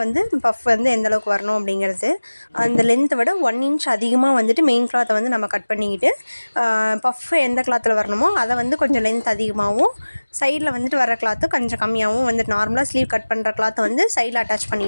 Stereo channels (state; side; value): inverted; both; correlation -1.00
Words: வந்து பஃப் வந்து எந்தளவுக்கு வரணும் அப்படிங்கிறது அந்த லென்த்தை விட 1 இன்ச் அதிகமாக வந்துட்டு மெயின் கிளாத்தை வந்து நம்ம கட் பண்ணிக்கிட்டு, பஃப் எந்த கிளாத்தில் வரணுமோ அதை வந்து கொஞ்சம் லென்த் அதிகமாகவும், சைடில் வந்துட்டு வர கிளாத்து கொஞ்சம் கம்மியாகவும் வந்துட்டு நார்மலாக ஸ்லீவ் கட் பண்ணுற கிளாத்தை வந்து சைடில் அட்டாச்